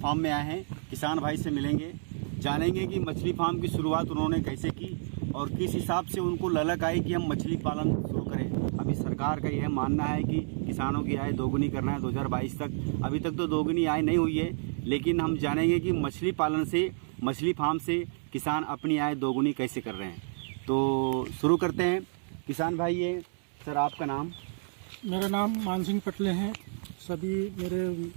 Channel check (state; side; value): silent; left; 58 dB below the other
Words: में आए हैं। किसान भाई से मिलेंगे, जानेंगे कि मछली फार्म की शुरुआत उन्होंने कैसे की और किस हिसाब से उनको ललक आई कि हम मछली पालन शुरू करें। अभी सरकार का यह मानना है कि किसानों की आय दोगुनी करना है 2022 तक। अभी तक तो दोगुनी आय नहीं हुई है, लेकिन हम जानेंगे कि मछली पालन से, मछली फार्म से किसान अपनी आय दोगुनी कैसे कर रहे हैं। तो शुरू करते हैं। किसान भाई, ये सर आपका नाम? मेरा नाम मान सिंह पटले हैं। सभी मेरे